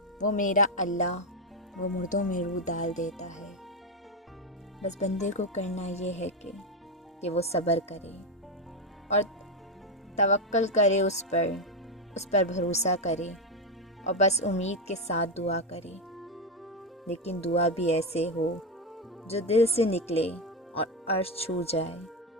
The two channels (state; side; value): normal; both; correlation 0.09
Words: وہ میرا اللہ وہ مردوں میں روح ڈال دیتا ہے۔ بس بندے کو کرنا یہ ہے کہ وہ صبر کرے اور توکل کرے، اس پر بھروسہ کرے اور بس امید کے ساتھ دعا کرے، لیکن دعا بھی ایسے ہو جو دل سے نکلے اور عرش چھو جائے۔